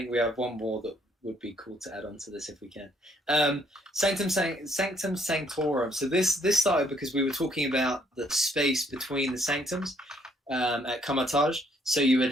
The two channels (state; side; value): normal; both; correlation 0.68